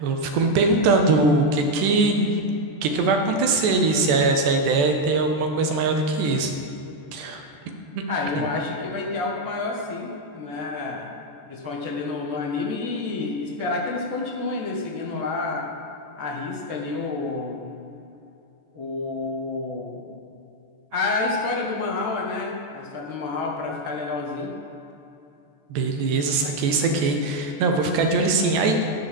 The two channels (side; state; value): left; late; 14 ms